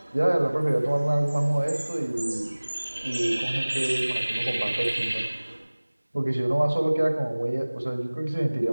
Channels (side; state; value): both; inverted; correlation -1.00